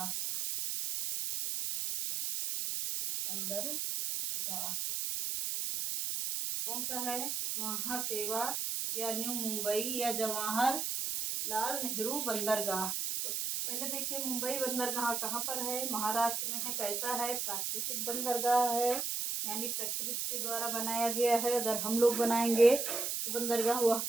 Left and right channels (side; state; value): right; noise; hiss, 1 dB below the sound